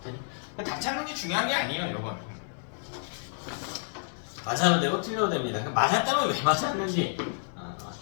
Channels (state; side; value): silent; right; 58 dB below the other